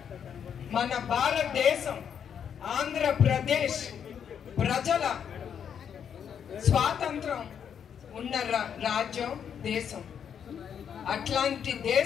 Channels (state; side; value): quieter; right; 8.0 dB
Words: మన భారతదేశం ఆంధ్రప్రదేశ్ ప్రజల స్వాతంత్రం ఉన్న రాజ్యం, దేశం. అట్లాంటి